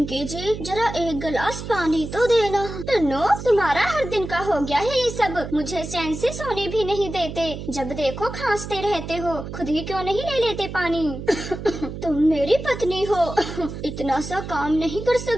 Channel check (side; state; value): right; noise; hum, 9 dB below the sound